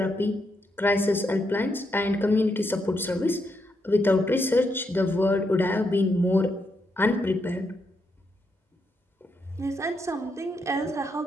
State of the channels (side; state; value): both; normal; correlation 0.80